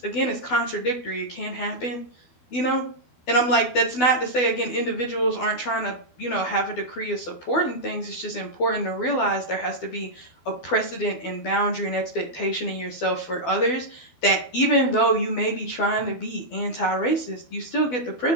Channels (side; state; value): right; late; 12 ms